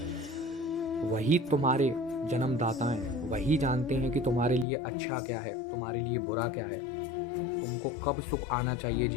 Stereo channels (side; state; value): right; drops out; at 4.7 s